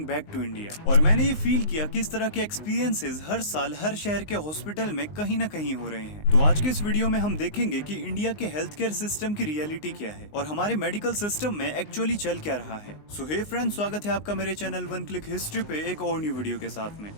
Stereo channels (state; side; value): late; right; 19 ms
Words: back to India. और मैंने ये फील किया कि इस तरह के एक्सपीरियंसेस हर साल हर शहर के हॉस्पिटल में कहीं ना कहीं हो रहे हैं। तो आज के इस वीडियो में हम देखेंगे कि इंडिया के हेल्थ केयर सिस्टम की रियलिटी क्या है और हमारे मेडिकल सिस्टम में एक्चुअली चल क्या रहा है। सो हे फ्रेंड्स, स्वागत है आपका मेरे चैनल वन क्लिक हिस्ट्री पे एक और न्यू वीडियो के साथ में।